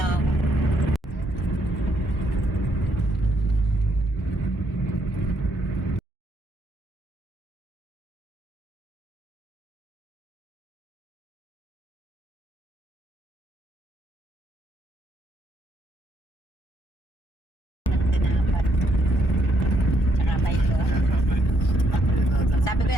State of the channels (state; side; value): normal; both; correlation 0.74